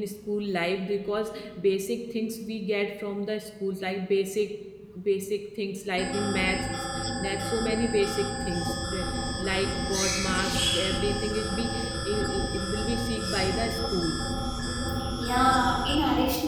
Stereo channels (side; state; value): both; identical; correlation 1.00